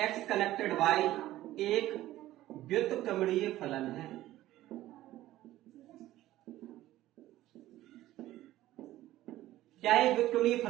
connected y एक व्युत्क्रमणीय फलन है। क्या एक व्युत्क्रमणीय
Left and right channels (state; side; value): quieter; left; 15.0 dB